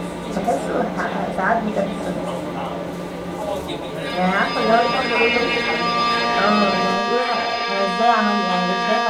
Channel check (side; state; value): both; identical; correlation 1.00